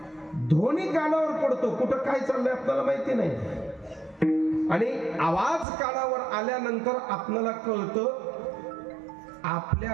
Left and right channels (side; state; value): left; drops out; at 5.7 s